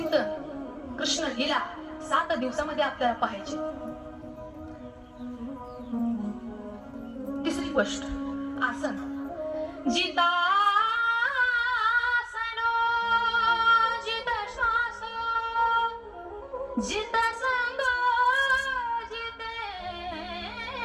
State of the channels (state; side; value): identical; both; correlation 1.00